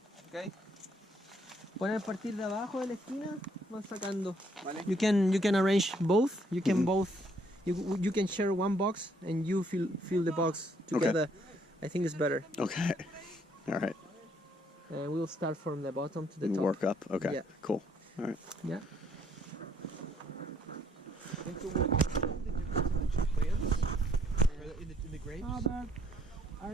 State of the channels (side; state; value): both; normal; correlation 0.68